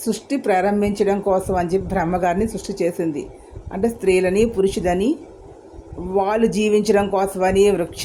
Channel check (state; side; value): identical; both; correlation 1.00